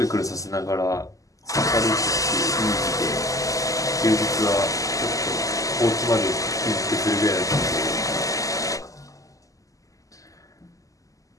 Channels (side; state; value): right; late; 0.16 ms